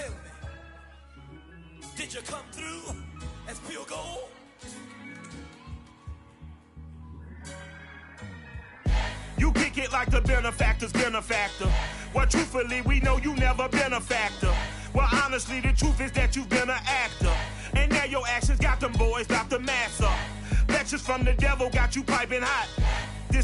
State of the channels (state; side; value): identical; both; correlation 1.00